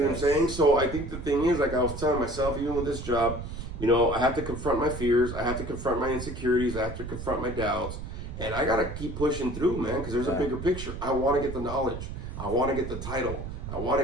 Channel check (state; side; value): noise; right; rumble, 8 dB below the sound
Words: what I'm saying? So I think the thing is, I was telling myself, even with this job, You know, I have to confront my fears. I have to confront my insecurities. I have to confront my doubts. And I got to keep pushing through, man, because there's a bigger picture. I want to get the knowledge. I want to get the title. I want